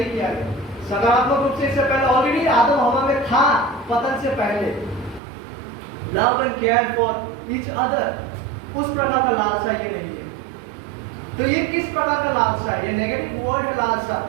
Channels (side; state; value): left; drops out; at 5.2 s